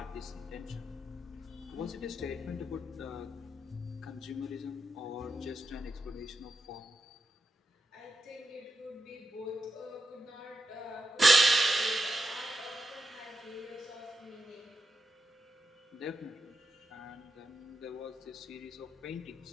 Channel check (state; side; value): normal; both; correlation 0.86